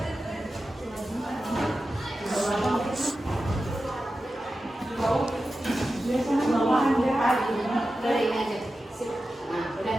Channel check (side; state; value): both; normal; correlation 0.92